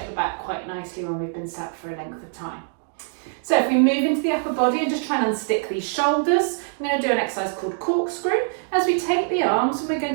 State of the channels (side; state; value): left; silent; digital silence